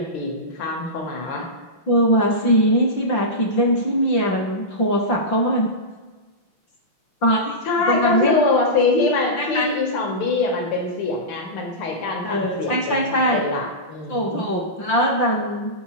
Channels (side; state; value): right; late; 5.8 ms